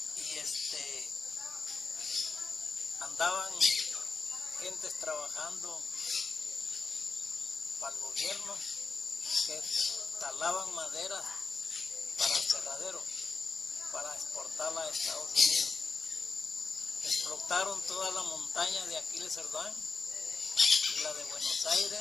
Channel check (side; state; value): right; quieter; 4.6 dB